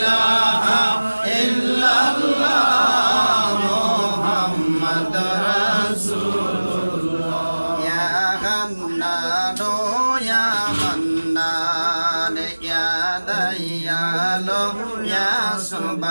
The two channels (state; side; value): inverted; both; correlation -1.00